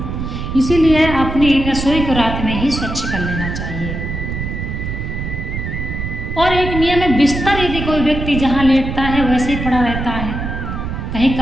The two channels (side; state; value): right; noise; rumble, 5 dB below the sound